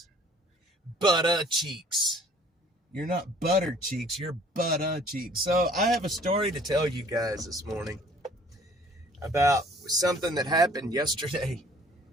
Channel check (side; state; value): both; normal; correlation 0.54